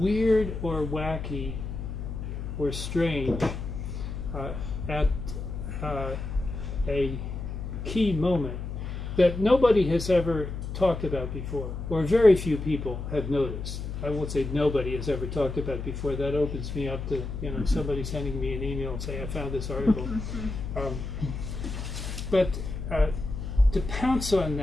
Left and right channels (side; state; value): left; noise; hum, 6 dB below the sound